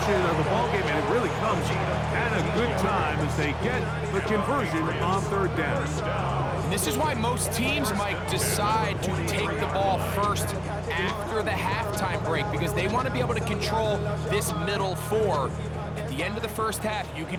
of the ballgame, and it really comes at a good time as they get the conversion on 3rd down. This is why most teams might decide to take the ball first after the halftime break, because they want to be able to control this middle 4. At the end of the first half, you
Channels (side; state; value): both; identical; correlation 1.00